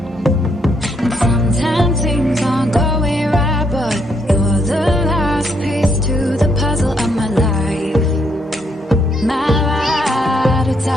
And sometimes things aren't going right, but you're the last piece to the puzzle of my life. My ride or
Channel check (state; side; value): normal; both; correlation 0.74